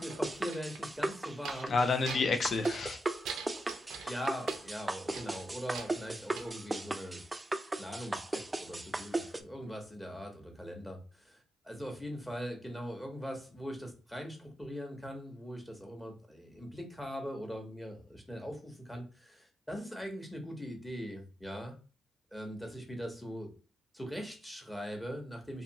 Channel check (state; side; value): normal; both; correlation 0.87